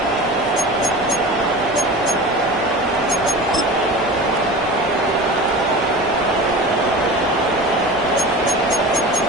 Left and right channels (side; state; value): both; normal; correlation 0.33